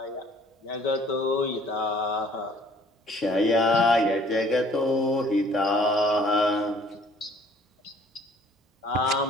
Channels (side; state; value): both; normal; correlation 0.56